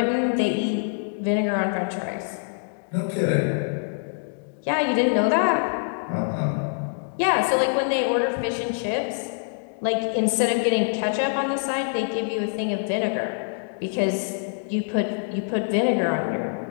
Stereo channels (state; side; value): silent; right; digital silence